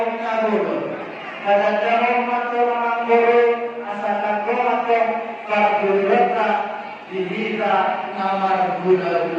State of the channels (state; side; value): identical; both; correlation 1.00